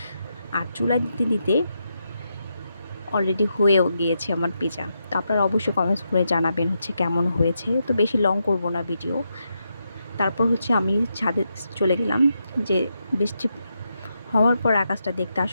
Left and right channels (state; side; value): inverted; both; correlation -0.83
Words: আর চুলায় দিতে দিতে অলরেডি হয়েও গিয়েছে আমার পিৎজা। তো আপনারা অবশ্যই কমেন্টস করে জানাবেন কেমন হয়েছে। তো বেশি লং করব না ভিডিও। তারপর আমি ছাদে চলে গেলাম, যে বৃষ্টি হওয়ার পর আকাশটা দেখতে